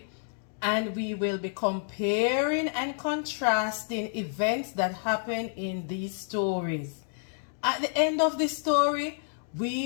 and we will be comparing and contrasting events that happen in these stories. At the end of the story,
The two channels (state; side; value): silent; right; digital silence